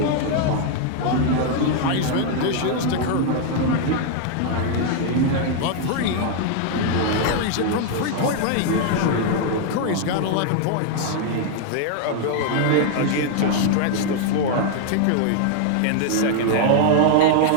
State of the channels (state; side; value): different; both; correlation 0.00